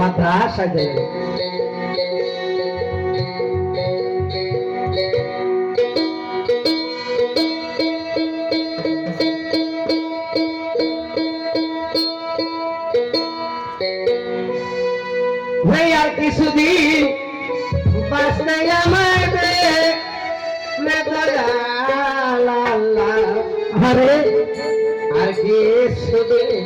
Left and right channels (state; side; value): identical; both; correlation 1.00